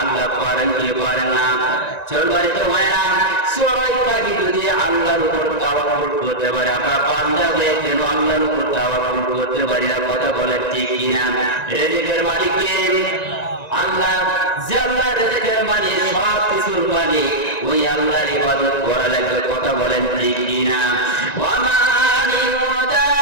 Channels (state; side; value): late; right; 1.9 ms